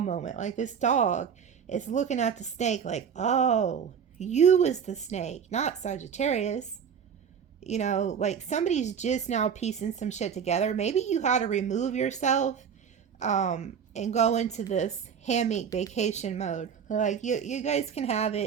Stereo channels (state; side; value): quieter; left; 7.4 dB